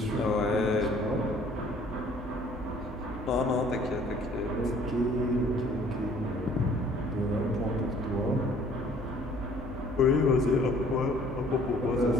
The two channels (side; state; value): both; normal; correlation 0.56